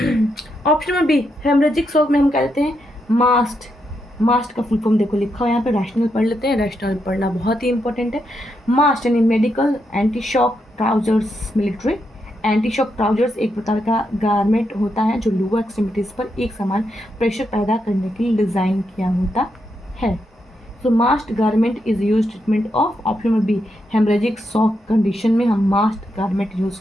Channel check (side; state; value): both; normal; correlation 0.82